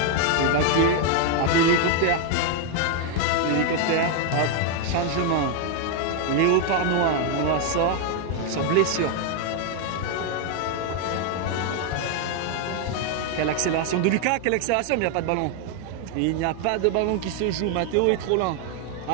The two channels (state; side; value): different; both; correlation 0.01